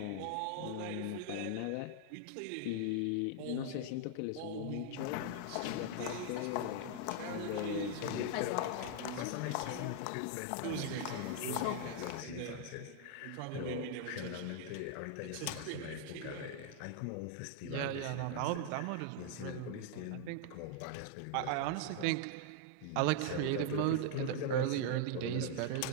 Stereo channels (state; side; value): different; both; correlation 0.00